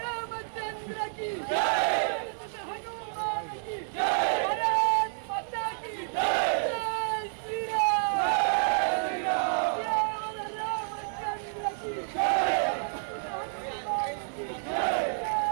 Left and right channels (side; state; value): left; silent; 58 dB below the other